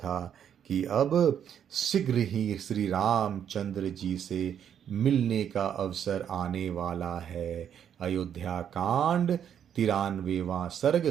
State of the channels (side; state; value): left; quieter; 8.9 dB